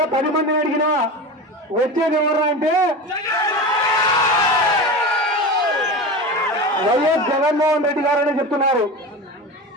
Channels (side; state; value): both; normal; correlation 0.27